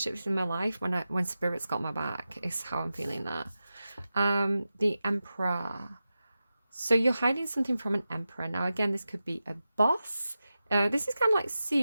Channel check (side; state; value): both; inverted; correlation -0.93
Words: in my life when Spirit's got my back, is how I'm feeling that. The Emperor. So you're hiding something from an Emperor. Now, again, this could be a boss. This is kind of like